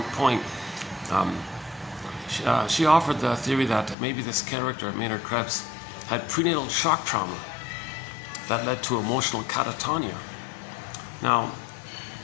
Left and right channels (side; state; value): right; drops out; at 4.0 s